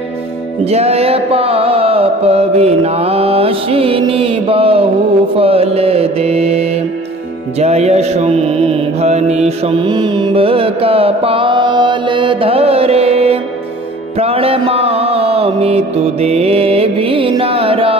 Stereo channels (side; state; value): both; normal; correlation 0.47